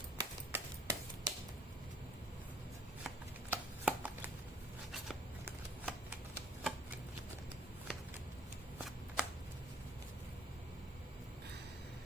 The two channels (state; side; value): normal; both; correlation 0.57